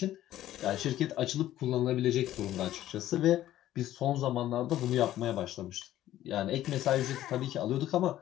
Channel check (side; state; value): right; quieter; 13.4 dB